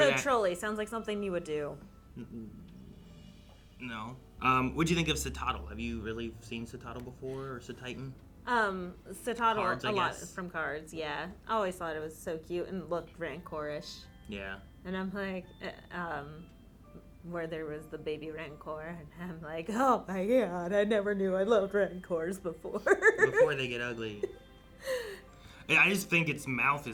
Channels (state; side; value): identical; both; correlation 1.00